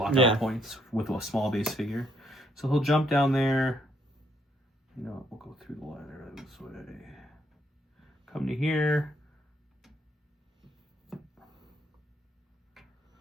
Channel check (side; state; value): both; normal; correlation 0.71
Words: out points with a small base figure. So he'll jump down there. You know, we'll go through the ladder this way. Come to here.